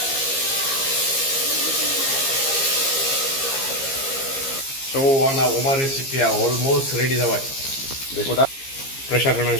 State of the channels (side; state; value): right; late; 15 ms